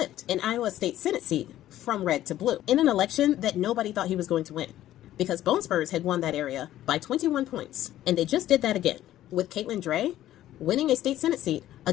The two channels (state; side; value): quieter; right; 13.3 dB